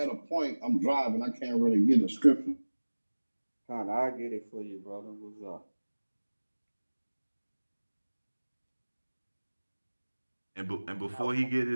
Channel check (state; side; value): inverted; both; correlation -1.00